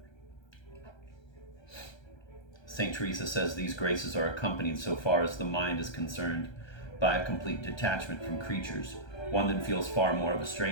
St. Teresa says these graces are accompanied, so far as the mind is concerned, by a complete detachment from creatures, one that feels far more of a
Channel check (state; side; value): late; right; 1.3 ms